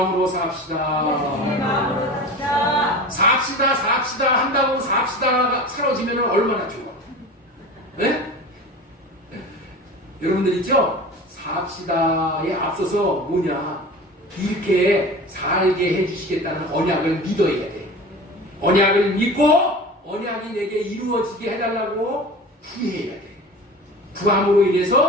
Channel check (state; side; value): normal; both; correlation 0.35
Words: 삽시다. 예수님의 마음으로 삽시다. 삽시다 한다고 삽시다가 사라지면 얼마나 좋아. 네? 여러분들 있죠? 삽시다에 앞서서 뭐냐? 이렇게 살게 해주시겠다는 언약을 믿어야 돼. 언약을 믿고 언약이 내게 이루어지게 해달라고 구해야 돼. 구함으로